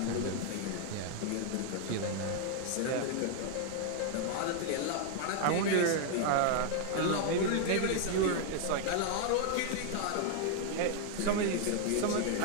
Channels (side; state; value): both; different; correlation 0.00